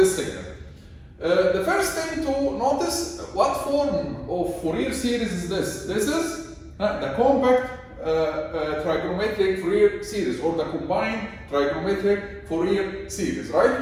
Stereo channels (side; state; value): both; identical; correlation 1.00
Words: signal. The first thing to notice, what form of Fourier series is this? This is the compact trigonometric Fourier series, or the combined trigonometric Fourier series, right?